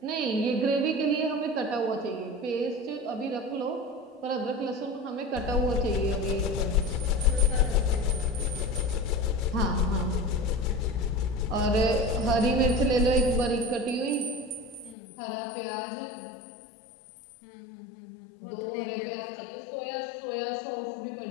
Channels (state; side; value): drops out; right; at 15.0 s